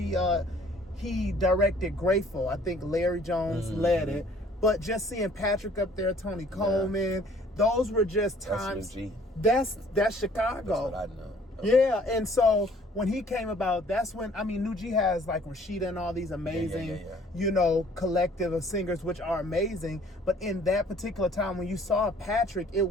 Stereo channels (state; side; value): normal; both; correlation 0.56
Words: directed Grateful. I think Larry Jones led it, but just seeing Patrick up there, Tony Coleman, those were just times. That's Chicago. That's what I know. Yeah, and so when he came about, that's when, New G has like Rashida and all these amazing, collective of singers, which are amazing. But in that particular time, when you saw Patrick, it